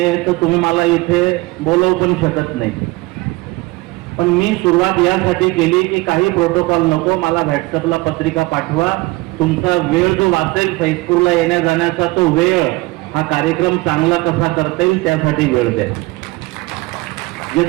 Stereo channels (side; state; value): left; quieter; 22.1 dB